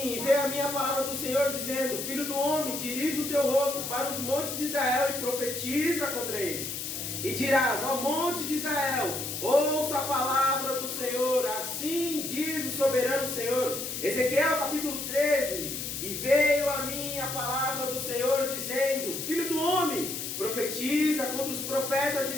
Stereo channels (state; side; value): noise; left; hiss, 5 dB below the sound